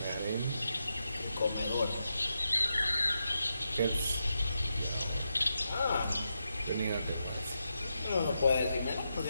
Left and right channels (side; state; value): both; inverted; correlation -0.86